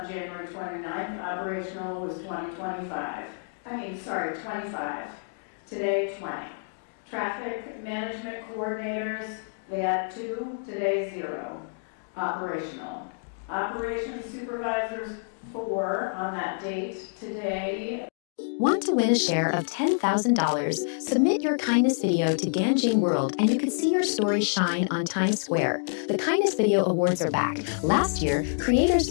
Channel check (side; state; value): right; silent; digital silence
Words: January 29th, operational was 25. Today, 20. Traffic management coordinators, they had 2, today 0. Operational. Operations supervisors, 4 on that date, today. Want to win a share of $10,000? Submit your kindness video to Ganjing World and you can see your story shine on Times Square. The Kindness Video Awards are back. Last year, creators